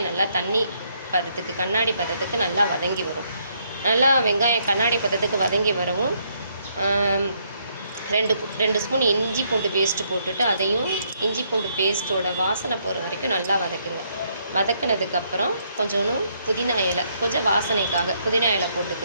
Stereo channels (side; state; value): both; inverted; correlation -0.72